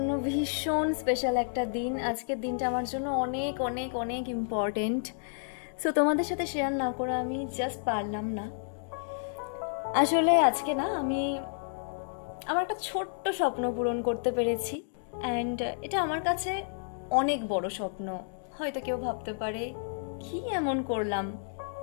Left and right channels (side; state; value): right; silent; digital silence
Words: ভীষণ স্পেশাল একটা দিন। আজকের দিনটা আমার জন্য অনেক অনেক অনেক ইম্পর্টেন্ট। সো তোমাদের সাথে শেয়ার না করে আমি জাস্ট পারলাম না। আসলে আজকে না আমি আমার একটা ছোট্ট স্বপ্ন পূরণ করতে পেরেছি, অ্যান্ড এটা আমার কাছে অনেক বড় স্বপ্ন। হয়তো কেউ ভাবতে পারে কি এমন করলাম,